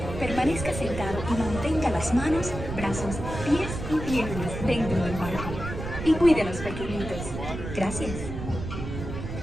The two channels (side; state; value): right; noise; rumble, 7 dB below the sound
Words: permanezca sentado y mantenga las manos, brazos, pies y piernas dentro del barco. Y cuide a los pequeñitos. Gracias.